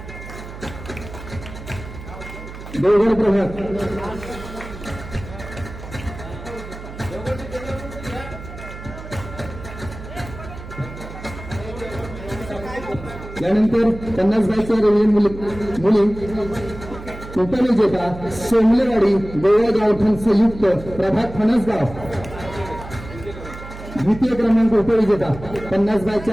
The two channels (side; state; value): right; noise; hum, 13 dB below the sound